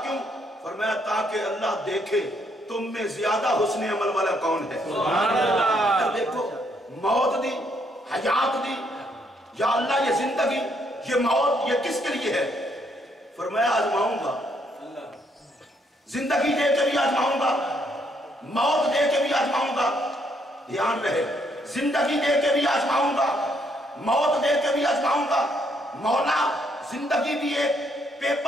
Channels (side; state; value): both; normal; correlation 0.72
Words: کیوں؟ فرمایا تاکہ اللہ دیکھے تم میں زیادہ حسن عمل والا کون ہے۔ دیکھو موت دی، حیات دی، یا اللہ یہ زندگی، یہ موت، یہ کس کے لیے ہے؟ فرمایا آزماؤں گا، زندگی دے کے بھی آزماؤں گا، موت دے کے بھی آزماؤں گا۔ دھیان رہے، زندگی دے کے بھی آزماؤں گا، موت دے کے بھی آزماؤں گا۔ مولا زندگی بھی ایک